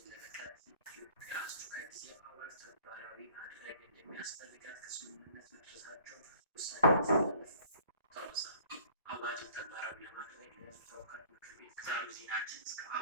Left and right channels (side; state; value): both; inverted; correlation -0.51